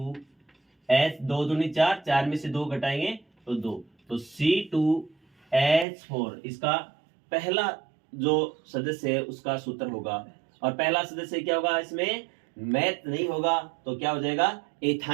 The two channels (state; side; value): drops out; left; at 5.9 s